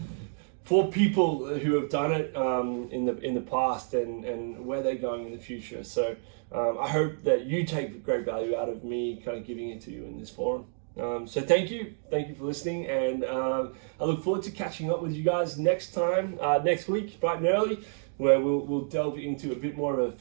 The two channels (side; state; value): left; silent; digital silence